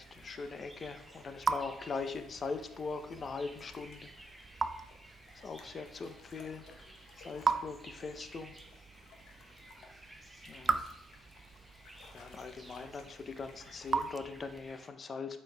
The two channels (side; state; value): both; normal; correlation 0.81